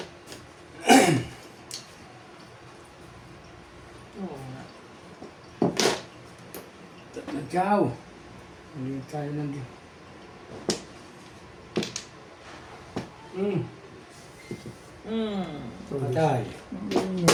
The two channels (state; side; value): identical; both; correlation 1.00